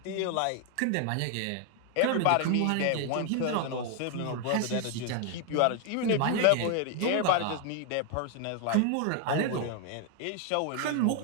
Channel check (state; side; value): different; both; correlation 0.00